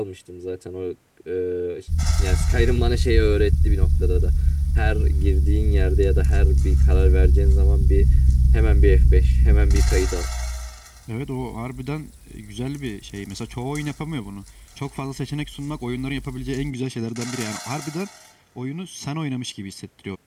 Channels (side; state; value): both; identical; correlation 1.00